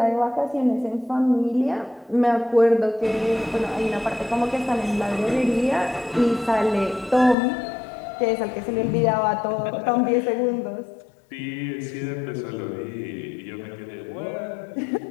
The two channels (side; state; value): right; drops out; at 7.4 s